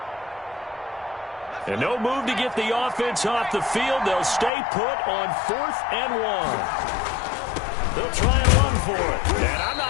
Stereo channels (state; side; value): drops out; right; at 4.5 s